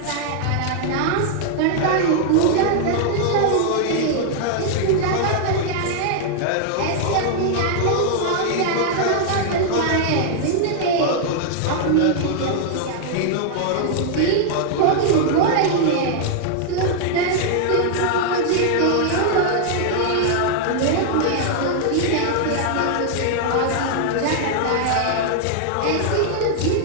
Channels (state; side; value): different; both; correlation 0.00